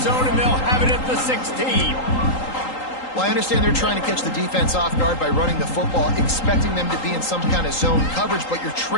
zone, and they'll have it at the 16. Well, I understand they're trying to catch the defense off guard by running the football, expecting them to be in some kind of zone coverage, but you're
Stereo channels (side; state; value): right; late; 3.8 ms